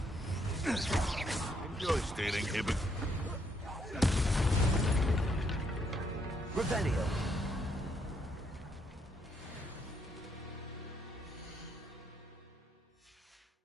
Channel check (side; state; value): both; normal; correlation 0.73